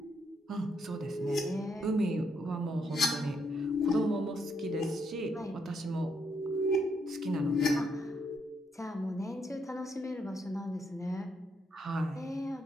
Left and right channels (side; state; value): both; normal; correlation 0.76